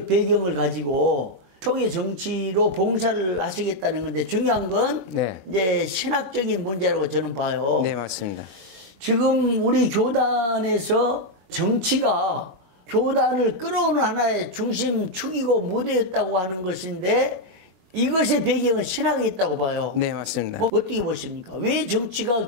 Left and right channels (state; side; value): late; left; 20 ms